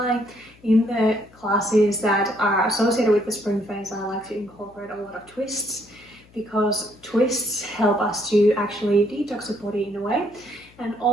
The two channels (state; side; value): noise; left; hum, 27 dB below the sound